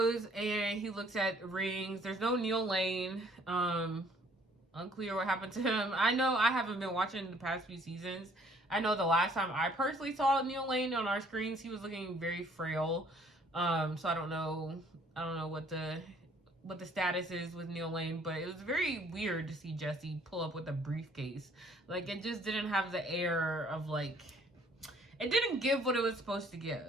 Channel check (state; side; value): normal; both; correlation 0.60